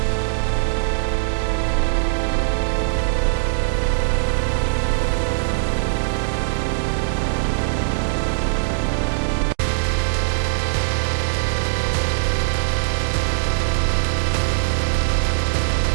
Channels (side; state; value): left; silent; digital silence